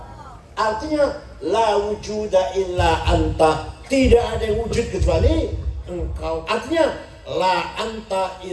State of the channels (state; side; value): identical; both; correlation 1.00